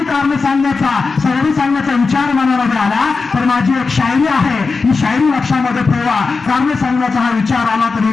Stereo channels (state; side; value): quieter; right; 4.4 dB